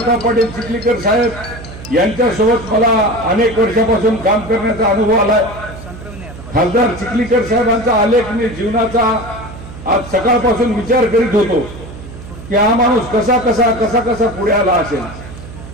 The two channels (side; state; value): right; noise; hum, 14 dB below the sound